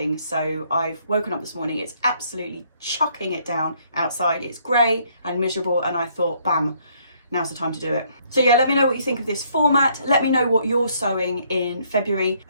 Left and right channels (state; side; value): inverted; both; correlation -0.66